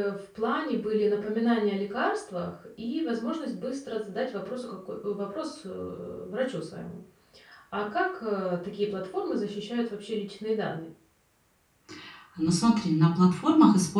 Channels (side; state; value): both; identical; correlation 1.00